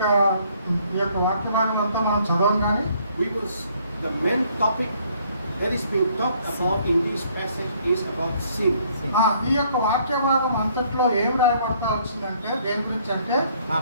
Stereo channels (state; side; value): inverted; both; correlation -0.64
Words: యొక్క వాక్య భాగం అంతా మనం చదవం కానీ The main topic that is being talked about in this passage is about sin. ఈ యొక్క వాక్య భాగం అంతట్లో ఏం రాయబడతా వచ్చిందంటే దేని గురించి అంటే